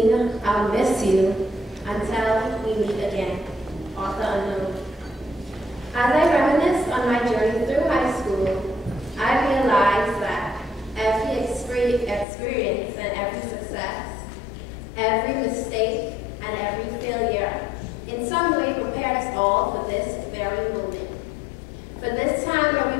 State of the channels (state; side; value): drops out; right; at 12.2 s